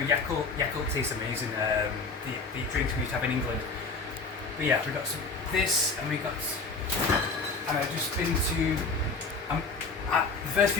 Yakult tastes amazing. The drinks we used to have in England. But yeah, we got some this, and I've just been to the first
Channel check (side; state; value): right; quieter; 4.1 dB